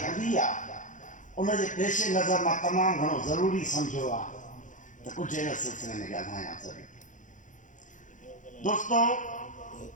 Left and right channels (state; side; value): late; right; 0.37 ms